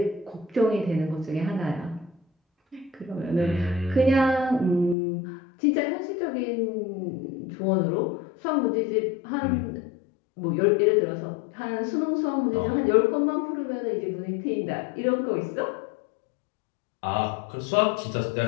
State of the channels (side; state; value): right; drops out; at 5.0 s